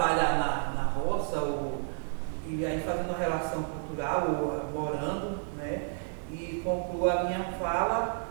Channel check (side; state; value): left; silent; digital silence